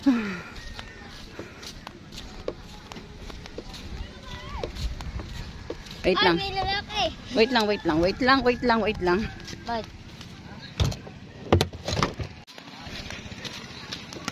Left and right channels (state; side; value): identical; both; correlation 1.00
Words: Wait Ay, lang. may lalaki. Wait lang. Ba't?